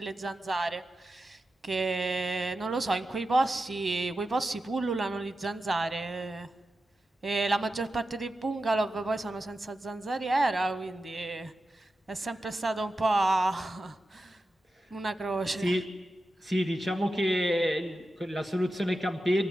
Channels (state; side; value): normal; both; correlation 0.91